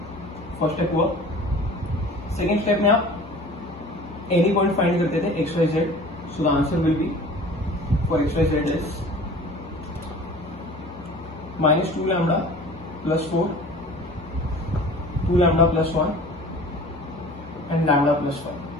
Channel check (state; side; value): normal; both; correlation 0.44